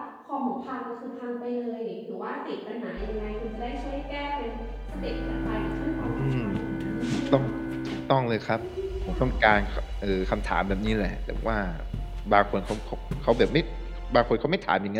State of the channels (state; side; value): identical; both; correlation 1.00